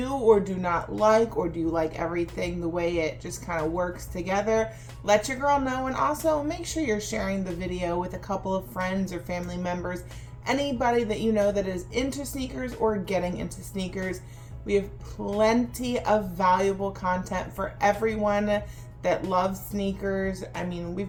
or do not like, or do you like everything the way it just kind of works together? Let your girl know, and also make sure you're sharing the video with a couple of friends or family members, anybody that you know that is into sneakers or getting into sneakers. We have plenty of valuable content for everyone that loves sneakers. I mean,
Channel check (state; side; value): identical; both; correlation 1.00